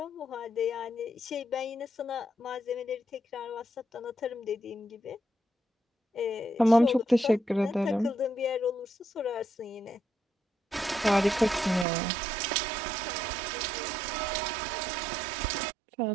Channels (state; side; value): drops out; left; at 11.9 s